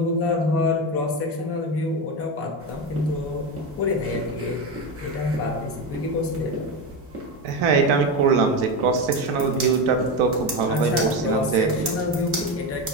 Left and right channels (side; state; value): both; normal; correlation 0.16